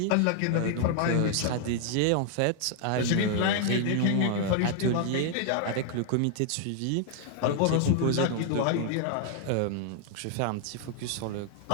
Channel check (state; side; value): different; both; correlation 0.00